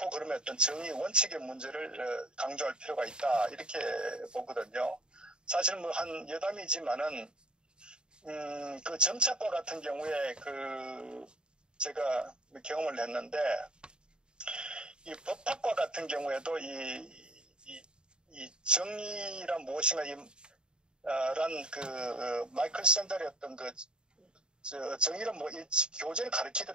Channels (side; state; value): left; late; 0.049 ms